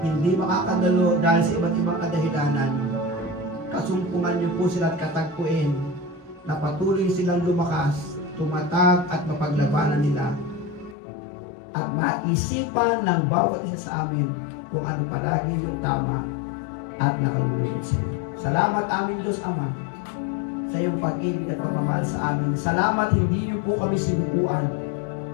hindi makakadalo dahil sa iba't ibang kadahilanan. Kasumpungan niyo po sila at katagpuin na patuloy silang lumakas, tumatag at mapaglabanan nila at maisipan ng bawat isa sa amin kung ano palagi yung tama at nakalulugod sa iyo. Salamat aming Diyos Ama sa iyong pag-ibig at pagmamahal sa amin. Salamat hindi niyo po kami sinukuan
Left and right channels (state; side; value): drops out; right; at 11.0 s